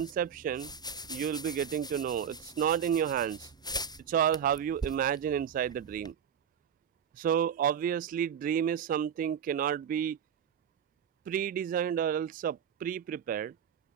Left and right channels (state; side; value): quieter; left; 8.2 dB